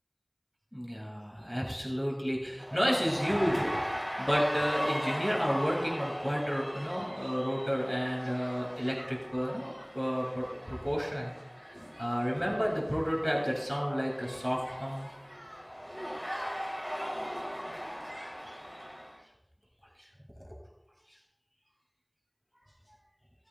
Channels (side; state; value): both; identical; correlation 1.00